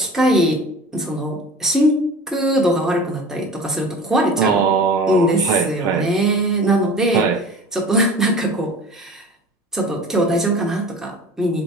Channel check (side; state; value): both; normal; correlation 0.40